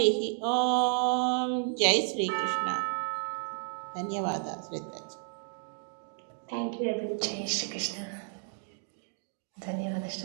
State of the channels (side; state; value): left; silent; 55 dB below the other